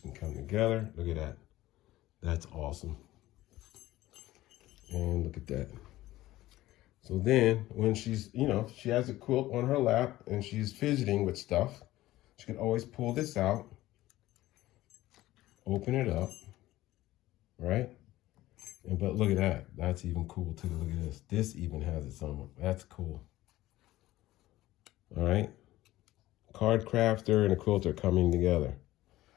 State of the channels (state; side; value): quieter; right; 16.2 dB